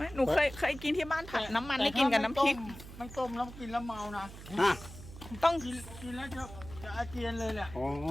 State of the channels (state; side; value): noise; right; hum, 14 dB below the sound